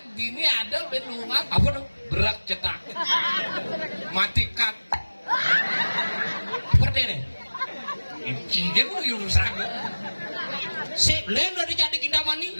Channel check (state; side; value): inverted; both; correlation -1.00